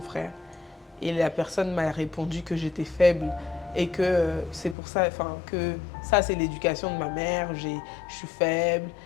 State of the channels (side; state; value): right; drops out; at 4.8 s